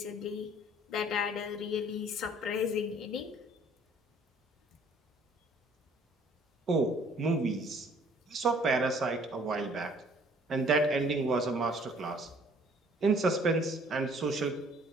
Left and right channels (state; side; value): normal; both; correlation 0.57